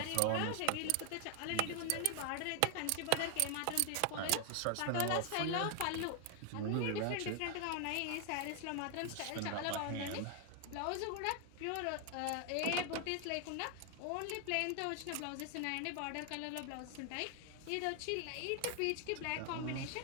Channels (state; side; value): different; both; correlation 0.00